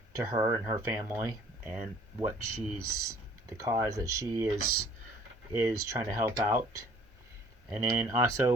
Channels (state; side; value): normal; both; correlation 0.55